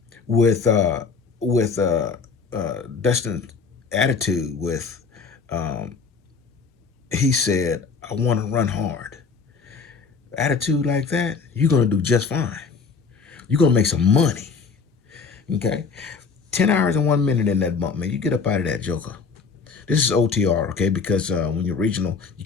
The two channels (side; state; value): right; quieter; 5.1 dB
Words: with Dustin's attitude he said, I want to run hard. Attitude like that, you're going to do just fine. You're going to make some money. Okay? 10 hours and 1 minute in that bump, man. You get up out of that joker. This is OTR, okay? Because when you're regional, you